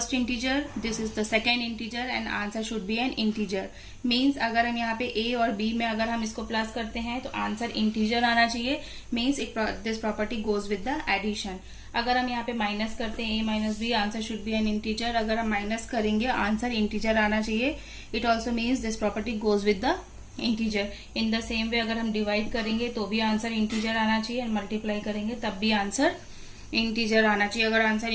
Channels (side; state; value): both; identical; correlation 1.00